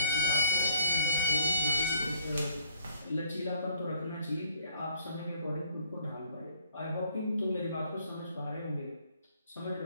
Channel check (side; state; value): both; inverted; correlation -0.59